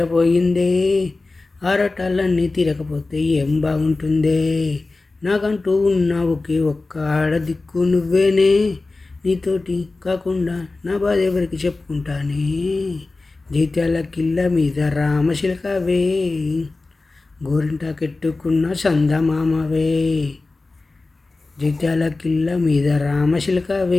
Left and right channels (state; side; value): quieter; right; 3.4 dB